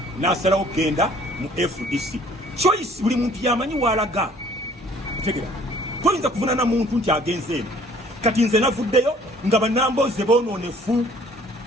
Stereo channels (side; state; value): both; normal; correlation 0.56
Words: n'asalawo okugenda mu FDC. Choice buli muntu yamanyi walaga otegera toyinza kuvunaana muntu nti agenze eno kati nze navuddeyo nga bannambooze boonoonefu